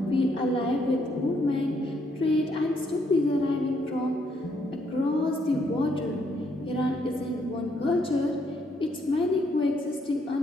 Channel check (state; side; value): normal; both; correlation 0.72